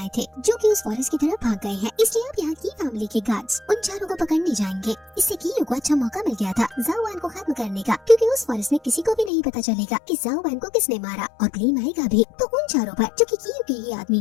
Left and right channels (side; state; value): right; drops out; at 9.3 s